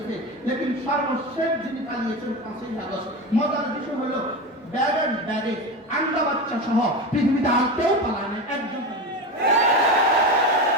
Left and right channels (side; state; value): both; normal; correlation 0.22